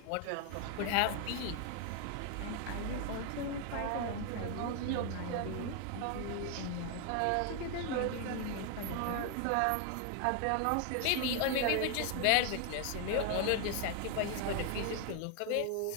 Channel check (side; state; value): both; different; correlation 0.00